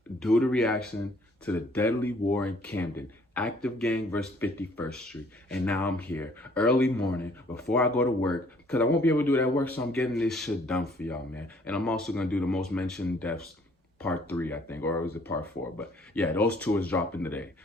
do the reaction to the deadly war in Camden, Active Gang versus 51st Street. And now I'm here, early morning, before I go to work, because I won't be able to do it at work, so I'm getting this shit done for y'all, man. And I'm also gonna do the most mentioned deaths part 3, I think, or was it part 4? But yeah, those two is dropping today.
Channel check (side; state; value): both; normal; correlation 0.60